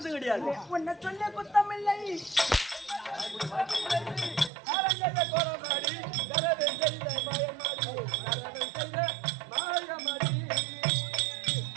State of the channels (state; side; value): drops out; left; at 4.5 s